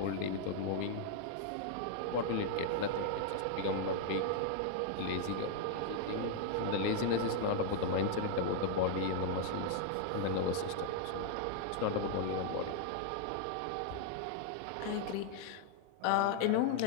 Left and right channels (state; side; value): different; both; correlation 0.00